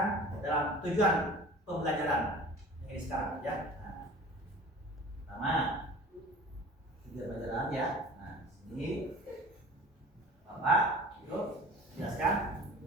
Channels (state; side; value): normal; both; correlation 0.42